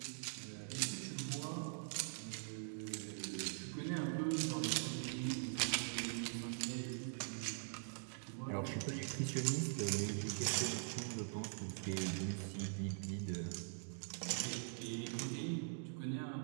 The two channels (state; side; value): silent; left; digital silence